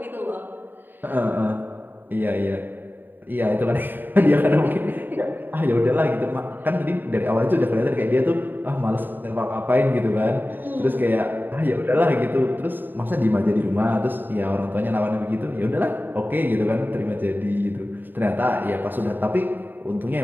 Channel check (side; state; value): left; late; 0.092 ms